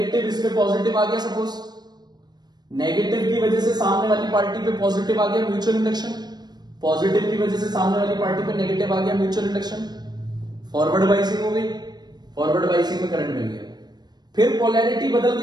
इस पे पॉजिटिव आ गया, सपोज नेगेटिव की वजह से सामने वाली पार्टी पे पॉजिटिव आ गया, म्यूचुअल इंडक्शन। पॉजिटिव की वजह से सामने वाली पार्टी पे नेगेटिव आ गया, म्यूचुअल इंडक्शन। फॉरवर्ड बाइसिंग हो गई, फॉरवर्ड बाइसिंग में करंट मिल गया। फिर पोलैरिटी बदल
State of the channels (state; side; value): late; left; 0.20 ms